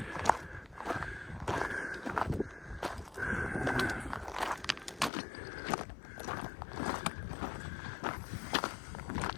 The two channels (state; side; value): drops out; right; at 5.1 s